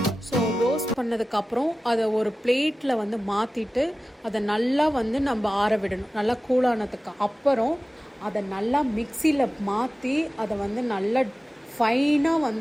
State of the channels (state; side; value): normal; both; correlation 0.96